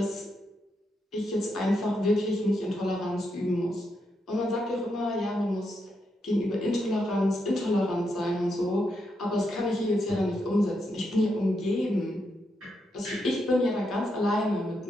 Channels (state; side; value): normal; both; correlation 0.82